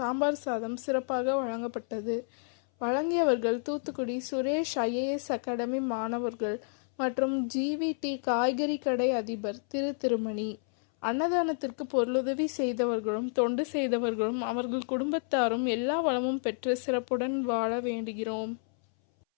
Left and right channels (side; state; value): right; silent; 58 dB below the other